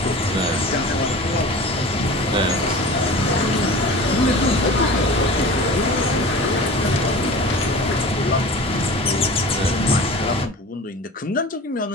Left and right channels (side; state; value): both; normal; correlation 0.37